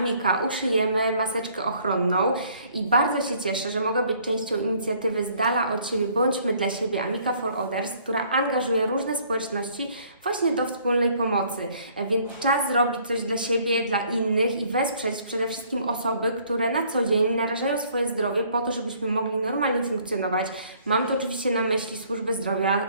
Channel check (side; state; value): both; inverted; correlation -0.61